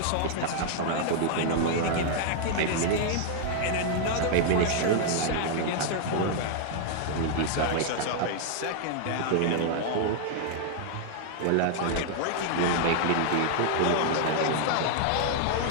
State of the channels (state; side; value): different; both; correlation -0.01